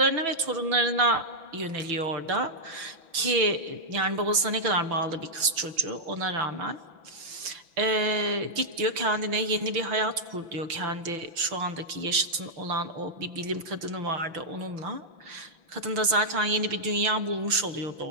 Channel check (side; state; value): left; late; 6.0 ms